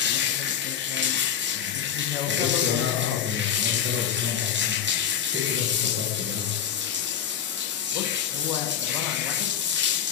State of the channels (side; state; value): right; quieter; 9.0 dB